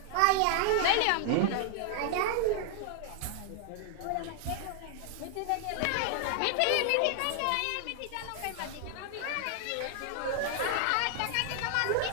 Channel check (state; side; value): different; both; correlation 0.00